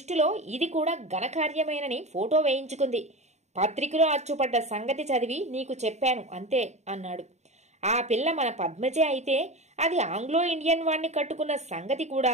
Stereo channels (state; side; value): late; left; 0.33 ms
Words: ఇది కూడా ఘనకార్యమేనని ఫోటో వేయించుకుంది. పత్రికలో అచ్చుపడ్డ సంగతి చదివి నీకు చెప్పాను అంతే అన్నాడు. ఆ పిల్ల మన పద్మజే అయితే అది ఆంగ్లో ఇండియన్ వాణ్ణి కట్టుకున్న సంగతి కూడా